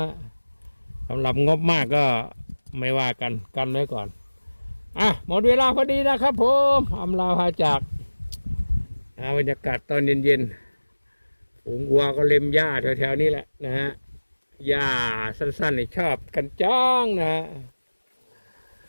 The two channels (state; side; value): inverted; both; correlation -1.00